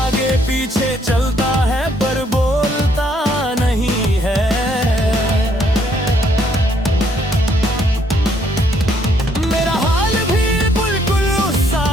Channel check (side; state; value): both; normal; correlation 0.69